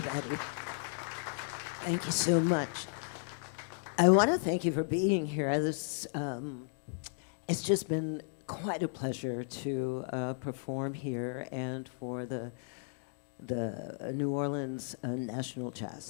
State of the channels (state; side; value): silent; right; digital silence